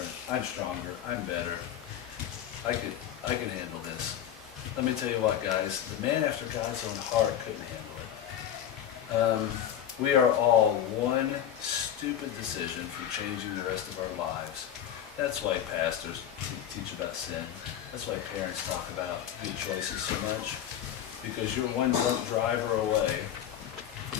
I'm stronger, I'm better, I can handle this. Let me tell you what, guys, the man after God's own heart couldn't handle it. We are all one stupid decision from changing the rest of our lives. That's why pastors teach about sin. That's why parents talk about good choices so much. Because you're one drunk driver away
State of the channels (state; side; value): quieter; right; 10.2 dB